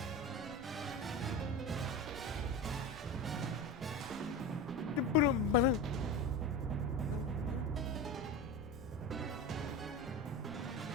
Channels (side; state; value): right; noise; rumble, 17 dB below the sound